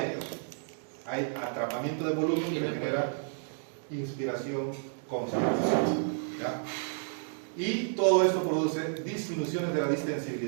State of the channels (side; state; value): left; silent; digital silence